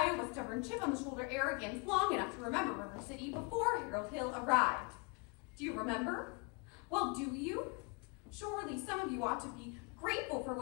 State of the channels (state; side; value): quieter; right; 32.2 dB